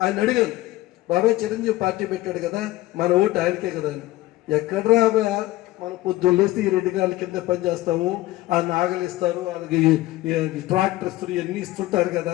అడిగాను, బాబాయ్ చిరంజీవి పార్టీ పెట్టాడు కదా, మన ఓటు ఆయనకే కదా అని. ఎక్కడరా మన పొద్దున్న లేస్తే ఈ రెడ్డి గారి కింద పని చేస్తాము, ఆ నాగలు ఇస్తారు, వాళ్ళకి ట్రాక్టర్ ఇస్తారు, ఇవన్నీ ఇస్తుంటారు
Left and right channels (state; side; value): quieter; right; 17.4 dB